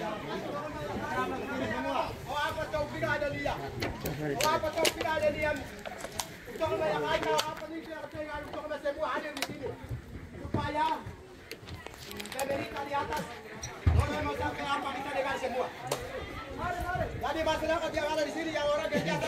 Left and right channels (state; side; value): identical; both; correlation 1.00